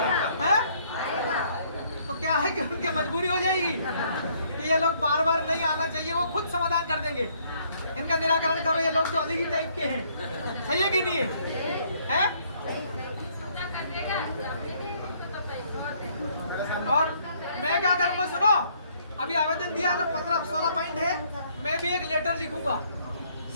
है? तो क्या है कि उनकी मजबूरी हो जाएगी कि ये लोग बार बार नहीं आना चाहिए, वो खुद समाधान कर देंगे, इनका निराकरण करो, ये लोग तो अलग ही टाइप के हैं, सही है कि नहीं है? और मैं क्या करूंगा सुनो, अभी आवेदन दिया ना, 15-16 पॉइंट है, मैं भी एक लेटर लिखूंगा,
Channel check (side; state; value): both; inverted; correlation -0.66